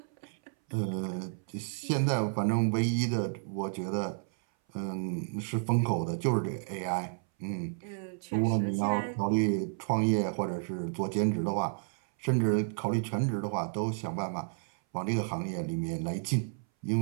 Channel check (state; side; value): silent; left; 57 dB below the other